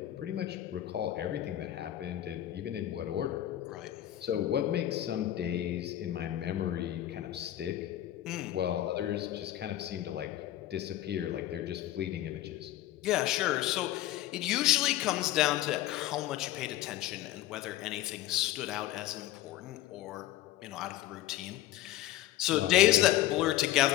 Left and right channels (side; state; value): right; quieter; 13.9 dB